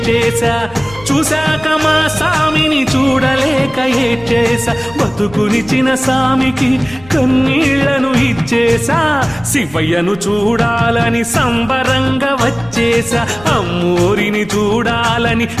చూశాక మా సామిని చూడలేక ఏడ్చేసా బతుకునిచిన సామికి కన్నీళ్లను ఇచ్చేసా శివయ్యను చూడాలని సంబరంగా వచ్చేసా అమ్మోరిని చూడాలని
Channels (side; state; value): left; noise; rumble, 21 dB below the sound